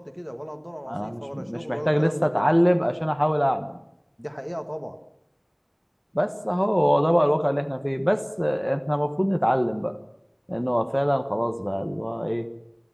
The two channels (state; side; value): identical; both; correlation 1.00